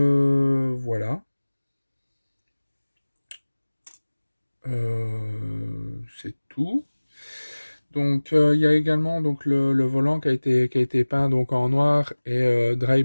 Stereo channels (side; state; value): both; inverted; correlation -1.00